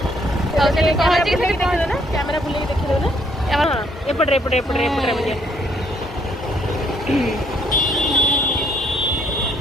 कैमरा बुले देखिए ना एपटे एपटे एपटे एपटे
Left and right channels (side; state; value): both; normal; correlation 0.68